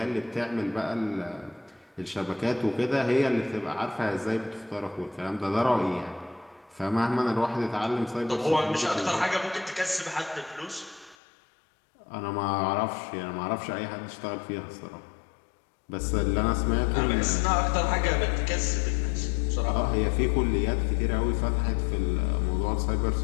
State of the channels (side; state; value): right; drops out; at 11.2 s